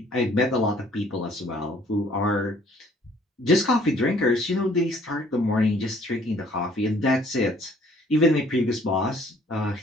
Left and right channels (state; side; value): normal; both; correlation 0.59